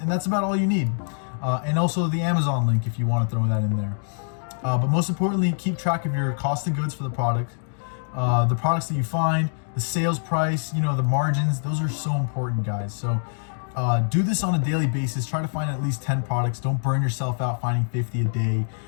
that's about all you need. And also the Amazon link if you want to throw that in there. But most importantly, keep track of your cost of goods for the product, the products that you find, the sales price, the margins. Those are so important, guys. So do this on a daily basis. Try to find at least 10 products. Don't burn yourself out finding 50 a day.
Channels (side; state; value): right; silent; digital silence